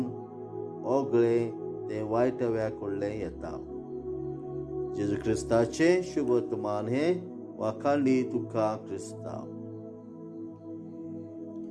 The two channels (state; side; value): identical; both; correlation 1.00